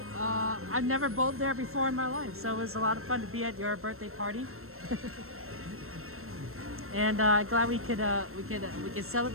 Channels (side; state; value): left; late; 0.62 ms